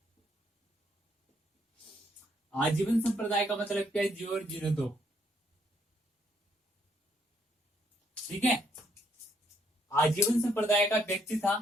आजीवन संप्रदाय का मतलब क्या है? जियो और जीने दो, ठीक है। आजीवन संप्रदाय का व्यक्ति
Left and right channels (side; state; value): both; normal; correlation 0.71